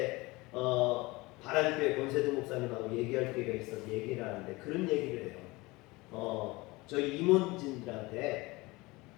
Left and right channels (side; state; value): right; quieter; 22.5 dB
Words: 바란교회 권세도 목사님하고 얘기할 기회가 있어서 얘기를 하는데 그런 얘기를 해요. 저희 임원진들한테